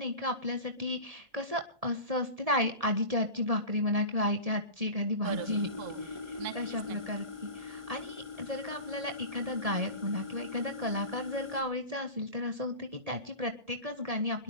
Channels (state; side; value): late; left; 1.7 ms